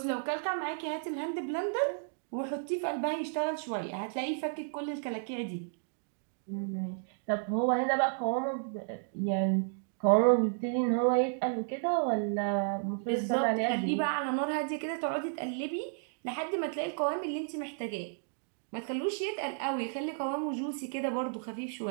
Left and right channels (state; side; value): silent; left; digital silence